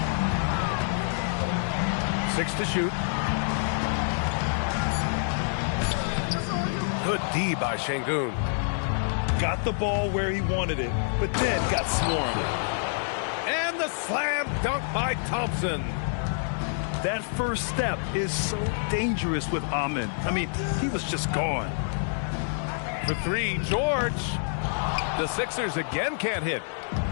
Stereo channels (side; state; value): right; silent; digital silence